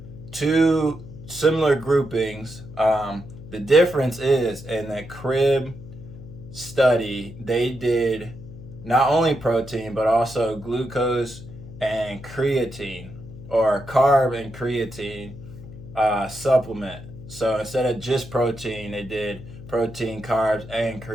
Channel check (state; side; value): noise; left; hum, 15 dB below the sound